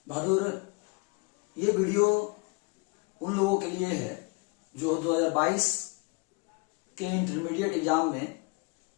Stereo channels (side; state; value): right; quieter; 31.5 dB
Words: बहादुर, ये वीडियो उन लोगों के लिए है जो 2022 के इंटरमीडिएट एग्जाम में